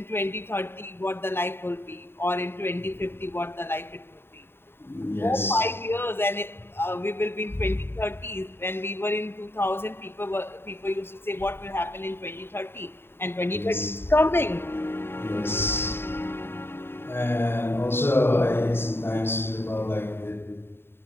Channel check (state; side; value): late; right; 0.11 ms